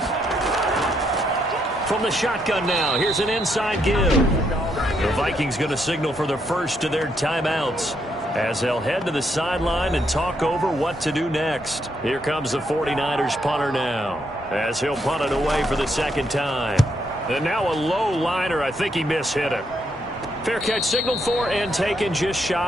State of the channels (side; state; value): both; normal; correlation 0.76